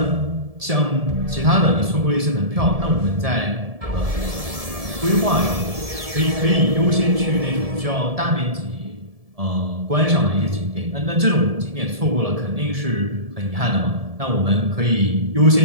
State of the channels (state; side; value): late; left; 1.7 ms